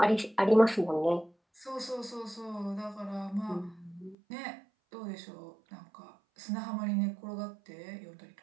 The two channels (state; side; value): drops out; left; at 4.2 s